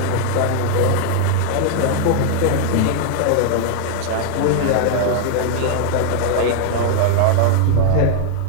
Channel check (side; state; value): both; different; correlation 0.00